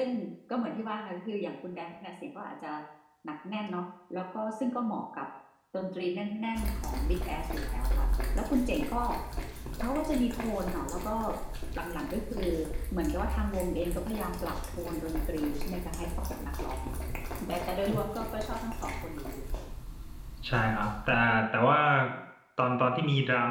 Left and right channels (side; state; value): both; identical; correlation 1.00